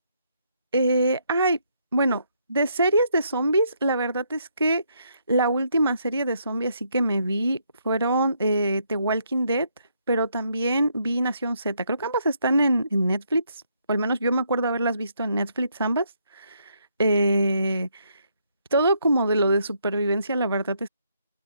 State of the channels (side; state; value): both; inverted; correlation -0.73